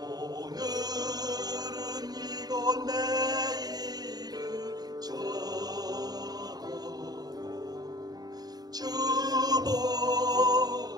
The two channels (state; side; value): late; left; 0.19 ms